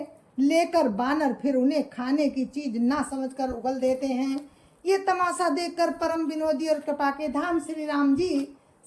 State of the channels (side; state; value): both; identical; correlation 1.00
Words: लेकर बानर फिर उन्हें खाने की चीज ना समझकर उगल देते हैं। ये तमाशा देखकर परम विनोदी और कृपा के धाम श्री राम जी,